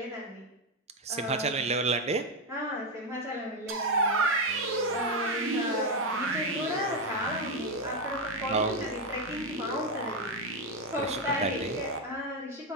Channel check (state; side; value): normal; both; correlation 0.07